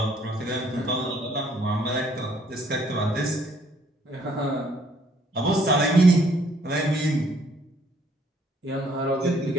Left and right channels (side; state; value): both; normal; correlation 0.65